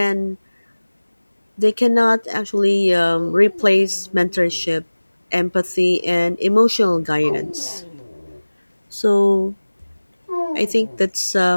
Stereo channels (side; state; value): both; inverted; correlation -1.00